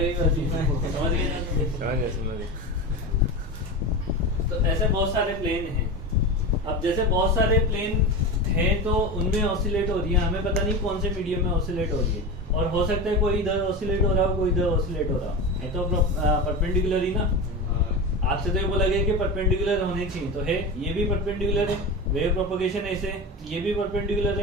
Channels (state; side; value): normal; both; correlation 0.24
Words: समझ गए। तो ऐसे बहुत सारे प्लेन हैं। अब जैसे बहुत सारे प्लेन हैं तो उनमें ऑसिलेट हो रही है, हमें पता नहीं कौन से मीडियम में ऑसिलेट हो रही है, और हो सकता है कोई इधर ऑसिलेट हो रहा हो, कोई इधर ऑसिलेट हो रहा है, तो परपेंडिकुलर ही ना। आपसे तो ये बोला गया कि परपेंडिकुलर होने चाहिए, तो है, ये भी परपेंडिकुलर है, वेव प्रोपगेशन ऐसे, ये भी परपेंडिकुलर